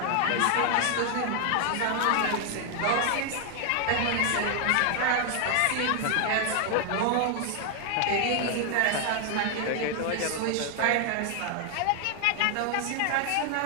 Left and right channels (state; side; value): different; both; correlation 0.00